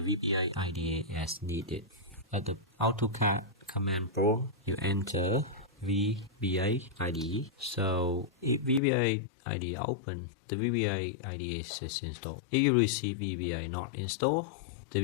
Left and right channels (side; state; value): right; drops out; at 8.8 s